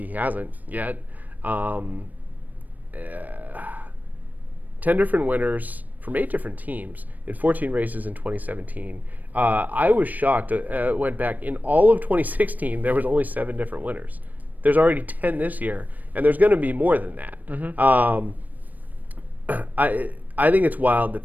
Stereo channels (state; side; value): late; left; 0.082 ms